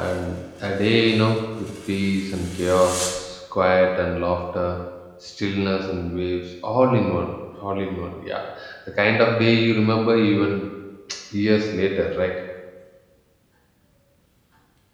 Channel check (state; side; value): identical; both; correlation 1.00